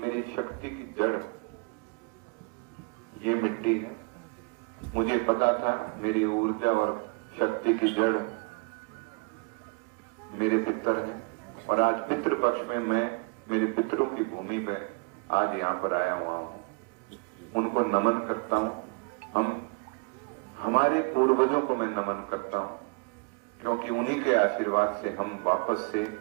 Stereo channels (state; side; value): quieter; left; 31.2 dB